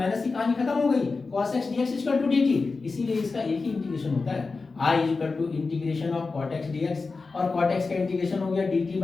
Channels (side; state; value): right; quieter; 4.1 dB